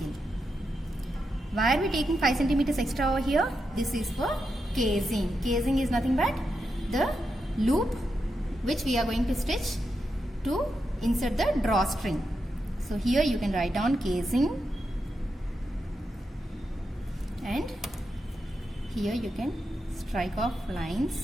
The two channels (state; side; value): normal; both; correlation 0.86